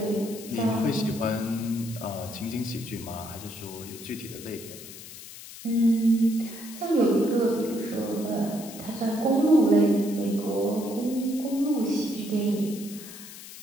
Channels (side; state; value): left; noise; hiss, 14 dB below the sound